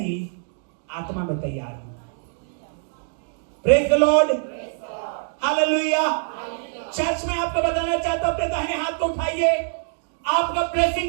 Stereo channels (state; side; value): silent; left; digital silence